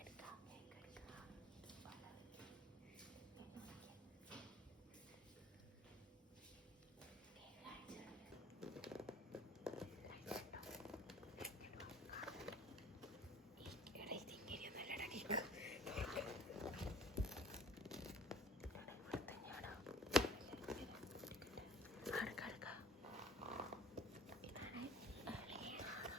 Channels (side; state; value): both; normal; correlation 0.49